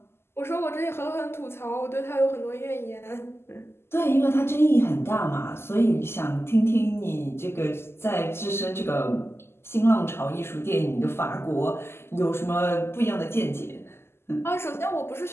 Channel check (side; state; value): right; late; 0.12 ms